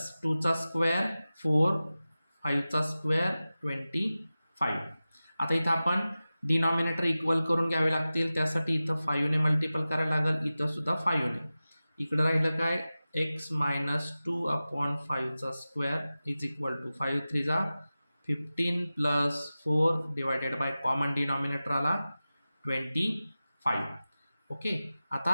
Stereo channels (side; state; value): both; inverted; correlation -0.96